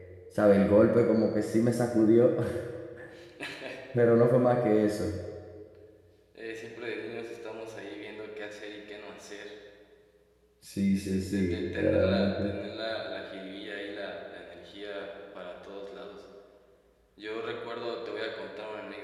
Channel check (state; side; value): identical; both; correlation 1.00